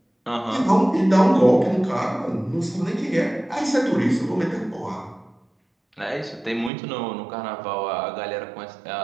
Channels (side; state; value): left; drops out; at 6.7 s